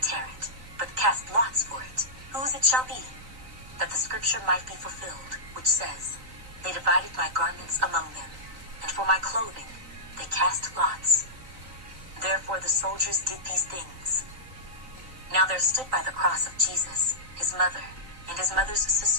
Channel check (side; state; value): left; late; 3.9 ms